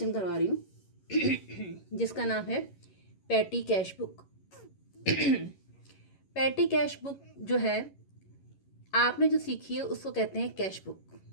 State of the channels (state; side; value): late; right; 11 ms